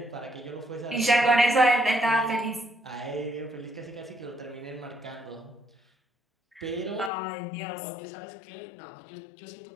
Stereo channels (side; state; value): right; drops out; at 7.1 s